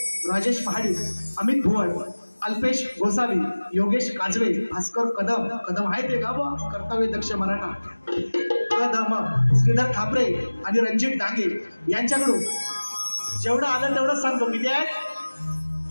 राजेश महाडिक, अमित भुवन, अल्पेश गोसावी, योगेश काजवे, भास्कर कदम आहे ते गाव कर्तव्य दक्ष मराठा कदम, श्रीधर खापरे आणि रणजित डांगे यांच्याकडून जेवढं आलं तेवढंच सांगतो. किती आहे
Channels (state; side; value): inverted; both; correlation -1.00